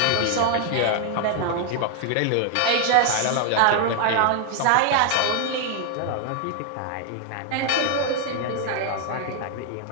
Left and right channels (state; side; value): different; both; correlation 0.00